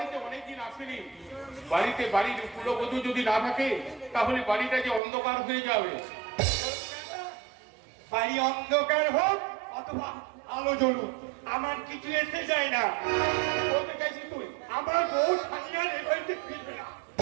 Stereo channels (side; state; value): left; drops out; at 5.0 s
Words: অনেকদিন আসেনি। বাড়িতে বাড়ির কুলবধূ যদি না থাকে তাহলে বাড়িটা যে অন্ধকার হয়ে যাবে। বাড়ি অন্ধকার হোক অথবা আলো জ্বলুক, আমার কিছু এসে যায় না। বলতে চাইছিস তুই? আমার বউ সানিয়ার এ বাড়িতে ফিরবে না।